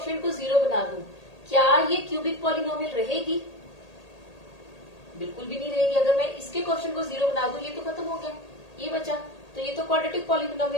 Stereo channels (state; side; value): late; right; 1.8 ms